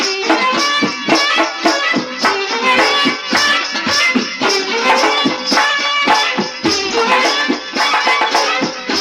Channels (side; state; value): both; identical; correlation 1.00